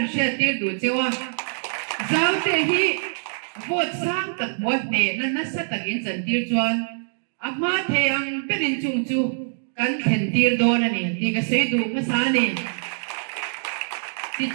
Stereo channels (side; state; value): left; silent; digital silence